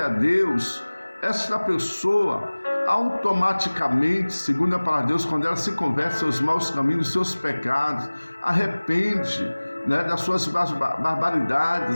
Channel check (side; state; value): both; inverted; correlation -1.00